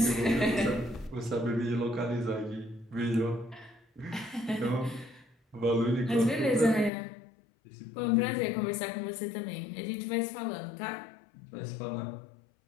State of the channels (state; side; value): drops out; right; at 6.9 s